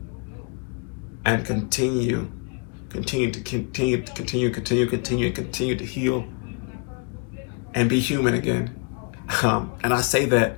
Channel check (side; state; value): right; quieter; 38.3 dB